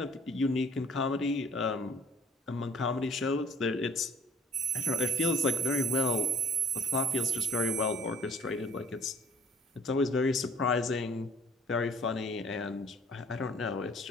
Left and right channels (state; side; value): normal; both; correlation 0.54